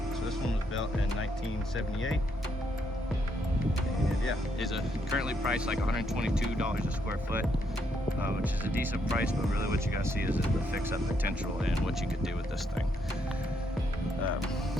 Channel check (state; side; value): normal; both; correlation 0.75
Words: So this one was built in 1978. And yeah, is currently priced like $122 a square foot, which is a decent price, but really what you gotta see is the fix-up potential and what you could do with this thing.